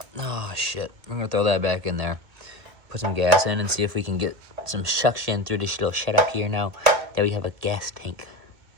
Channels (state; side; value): late; left; 1.8 ms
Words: oh shit, I'm gonna throw that back in there. Put some gas in and see if we can get some suction through this little shut up here now that we have a gas tank.